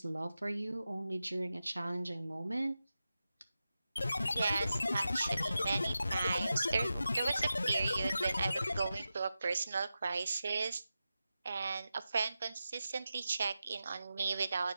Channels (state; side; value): inverted; both; correlation -0.92